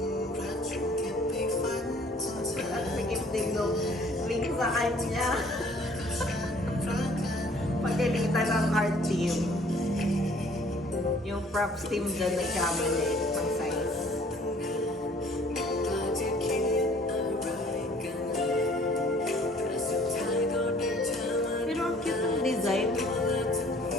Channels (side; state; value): both; normal; correlation 0.56